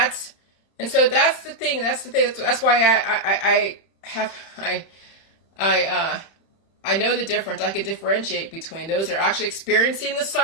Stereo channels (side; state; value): right; late; 30 ms